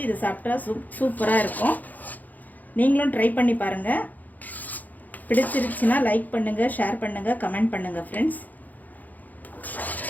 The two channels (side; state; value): right; late; 0.082 ms